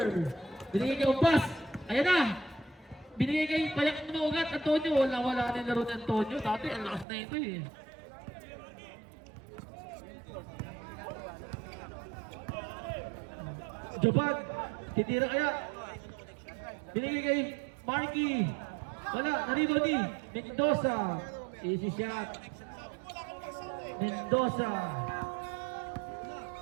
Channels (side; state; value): left; drops out; at 7.1 s